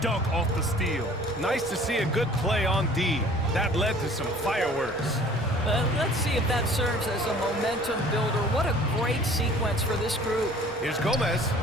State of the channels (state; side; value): normal; both; correlation 0.50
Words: dunk off the steal. Nice to see a good play on D. That led to some fireworks. Let's see if that serves as a momentum builder. What a great sequence for this group. Here's Gomez.